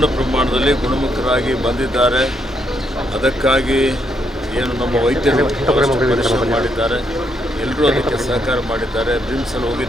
ಪ್ರಮಾಣದಲ್ಲಿ ಗುಣಮುಖರಾಗಿ ಬಂದಿದ್ದಾರೆ. ಅದಕ್ಕಾಗಿ ಏನು ನಮ್ಮ ವೈದ್ಯರು ಪರಿಶ್ರಮ ಮಾಡಿದ್ದಾರೆ, ಎಲ್ಲರೂ ಅದಕ್ಕೆ ಸಹಕಾರ ಮಾಡಿದ್ದಾರೆ. ಬ್ರಿಮ್ಸಲ್ಲಿ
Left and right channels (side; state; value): both; normal; correlation 0.76